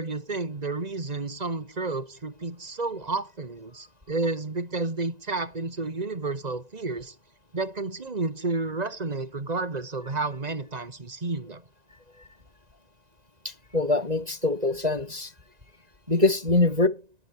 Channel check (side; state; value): left; late; 1.9 ms